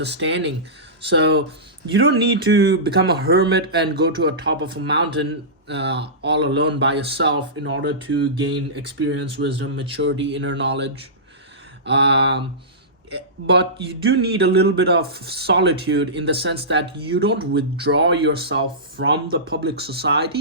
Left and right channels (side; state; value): both; normal; correlation -0.19